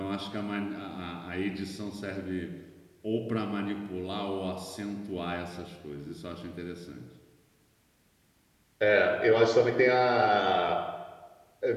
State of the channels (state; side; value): identical; both; correlation 1.00